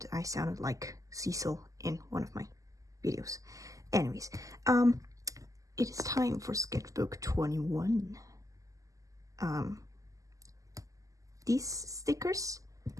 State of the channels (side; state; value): left; late; 0.16 ms